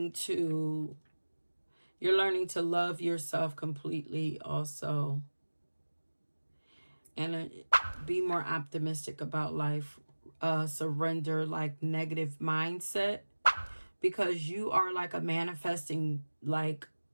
to, you're learning to love yourself completely also. And be more optimistic about life. Surrender like negative mindset, because you are like a manifesting like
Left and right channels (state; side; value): inverted; both; correlation -1.00